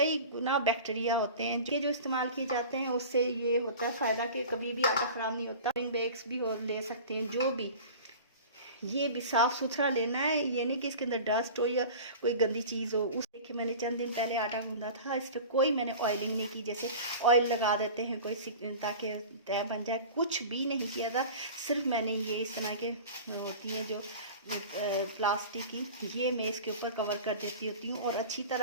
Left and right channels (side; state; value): both; inverted; correlation -0.37